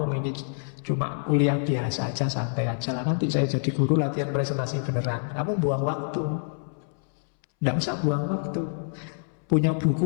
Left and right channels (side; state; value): right; silent; 60 dB below the other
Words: ini cuma kuliah biasa aja, santai aja lah. Nanti saya jadi guru latihan presentasi beneran. Kamu buang waktu. Tidak usah buang waktu. Punya